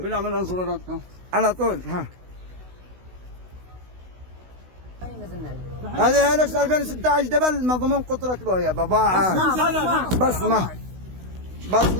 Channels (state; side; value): late; left; 16 ms